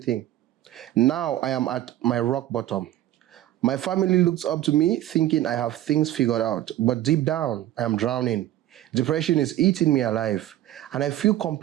Now I am at my rock bottom. My family looks up to me thinking I have things figured out, but deep down, I am drowning. Depression is eating me alive, and I feel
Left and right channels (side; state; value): left; quieter; 13.7 dB